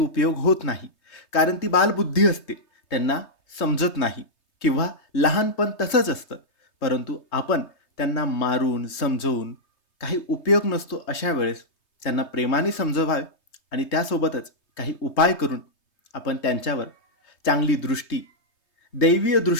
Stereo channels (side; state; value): right; late; 3.2 ms